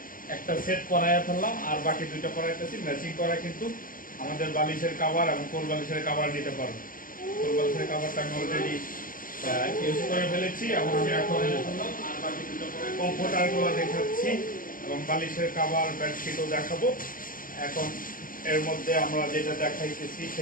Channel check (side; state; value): right; late; 0.40 ms